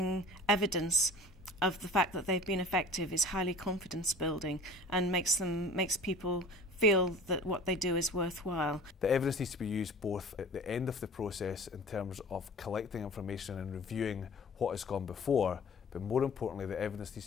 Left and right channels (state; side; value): normal; both; correlation 0.42